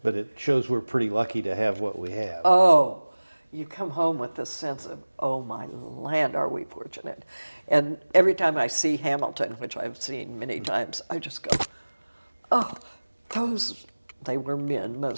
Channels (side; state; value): both; inverted; correlation -1.00